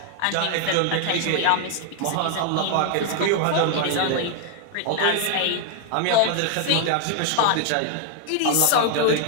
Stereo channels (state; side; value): different; both; correlation 0.00